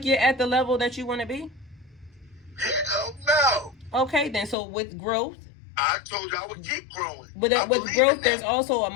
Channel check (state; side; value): drops out; right; at 4.5 s